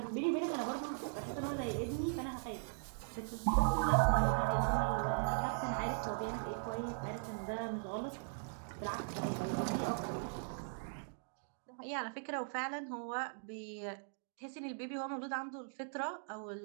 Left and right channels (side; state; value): left; silent; digital silence